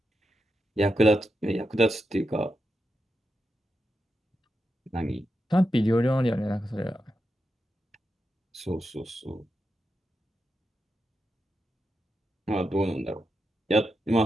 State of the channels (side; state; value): both; normal; correlation 0.87